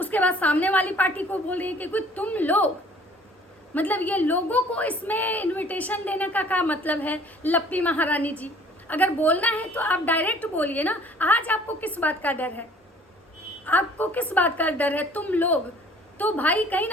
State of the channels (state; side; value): normal; both; correlation 0.53